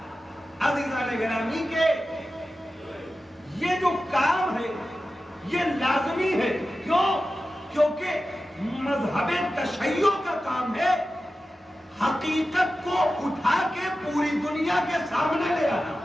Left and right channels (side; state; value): both; normal; correlation 0.93